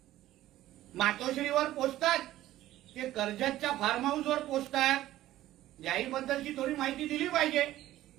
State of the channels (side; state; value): left; quieter; 14.6 dB